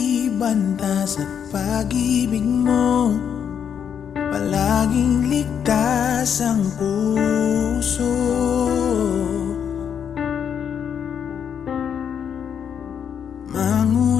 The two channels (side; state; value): right; quieter; 8.0 dB